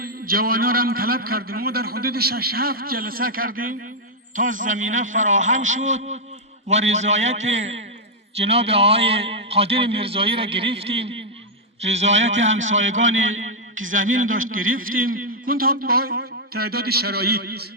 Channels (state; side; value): normal; both; correlation -0.04